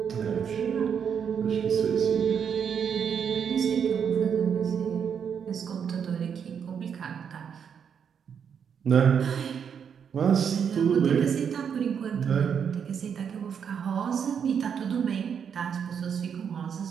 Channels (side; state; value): left; quieter; 7.4 dB